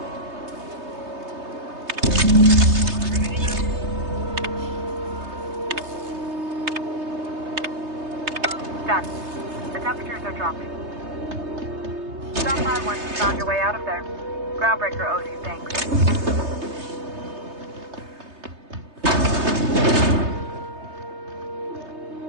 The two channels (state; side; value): late; left; 3.3 ms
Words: Done. The temperatures are dropping. Stop by once you found your way out of there. Groundbreaker owes you thanks.